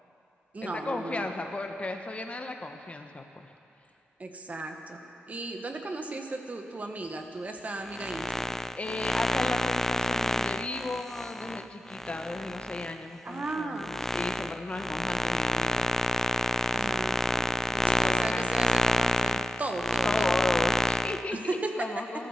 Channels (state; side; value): normal; both; correlation 0.93